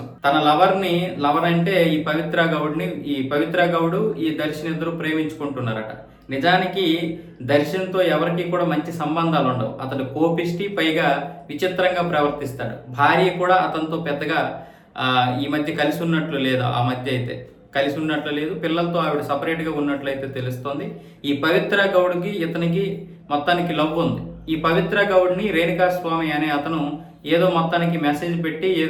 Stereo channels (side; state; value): both; identical; correlation 1.00